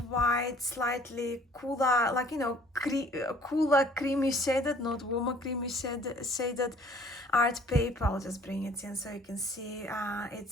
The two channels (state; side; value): normal; both; correlation 0.55